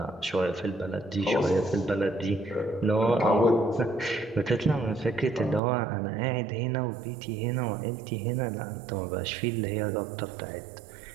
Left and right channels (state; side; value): drops out; left; at 5.6 s